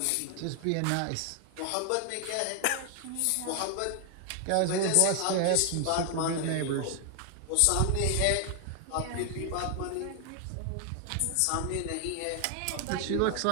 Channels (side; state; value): both; different; correlation 0.00